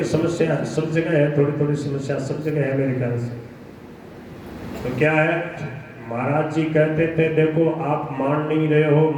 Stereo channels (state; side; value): identical; both; correlation 1.00